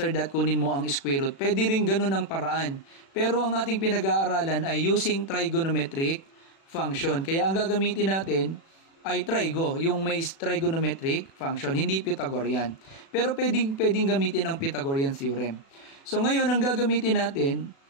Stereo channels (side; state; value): right; late; 36 ms